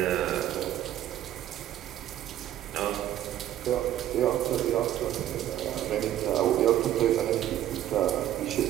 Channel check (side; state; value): left; quieter; 12.5 dB